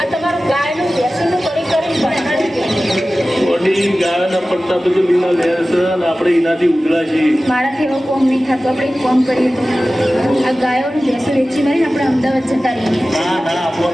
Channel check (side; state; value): both; normal; correlation 0.96